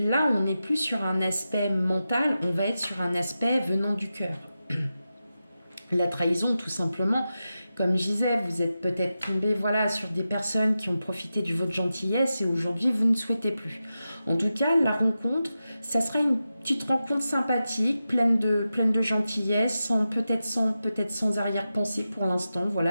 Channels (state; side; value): inverted; both; correlation -0.91